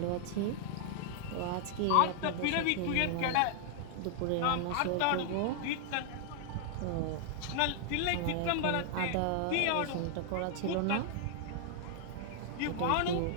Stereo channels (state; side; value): different; both; correlation -0.01